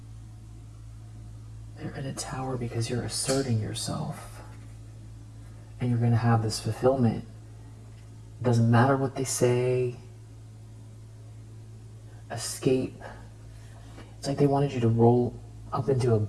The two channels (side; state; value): both; identical; correlation 1.00